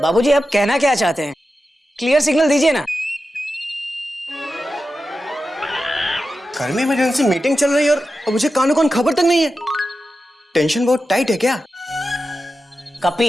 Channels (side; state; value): both; normal; correlation 0.91